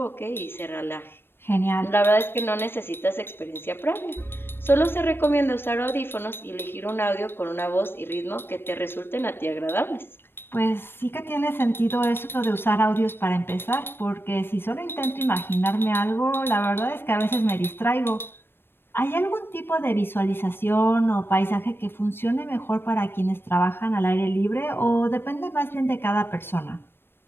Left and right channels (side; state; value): right; late; 0.10 ms